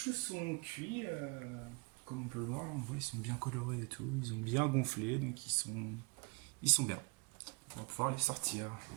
sont cuits. Comme on peut le voir, là, on voit, ils sont bien colorés et tout. Ils ont bien gonflé, donc ils sont bien. On va pouvoir les sortir.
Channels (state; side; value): quieter; left; 30.7 dB